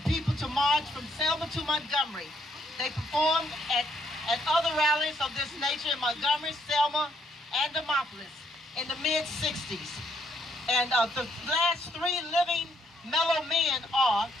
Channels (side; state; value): both; normal; correlation 0.71